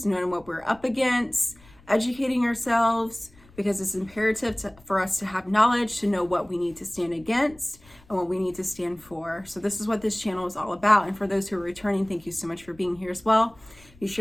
knowing what we're up against, educating ourselves, because it's imperative for us to have knowledge to know what we need to stand against and what we need to stand for. So this is what this channel is all about. And for those who are returning, thank you so much for being here as well. Be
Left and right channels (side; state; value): left; noise; rumble, 26 dB below the sound